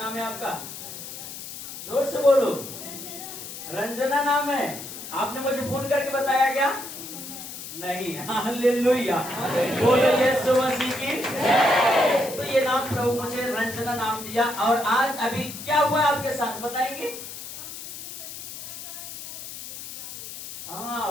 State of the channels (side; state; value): left; noise; hiss, 11 dB below the sound